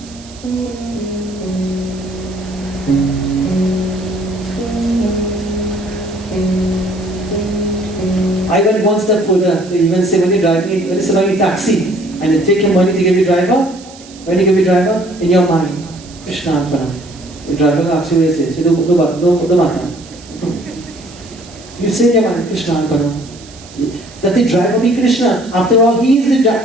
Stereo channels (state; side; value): noise; right; hiss, 21 dB below the sound